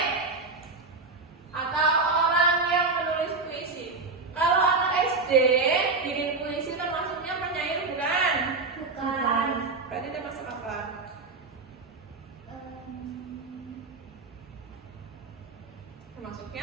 atau orang yang menulis puisi. Kalau anak SD bikin puisi termasuknya penyair bukan? Bukan. Berarti termasuk apa?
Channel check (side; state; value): left; quieter; 4.0 dB